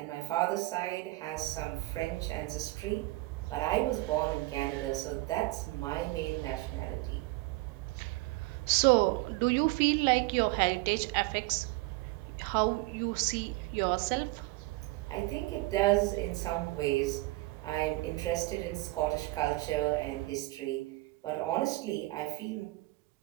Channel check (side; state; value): left; quieter; 21.1 dB